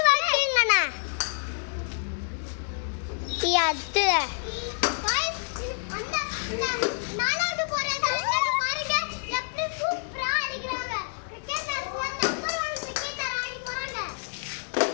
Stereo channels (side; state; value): right; silent; digital silence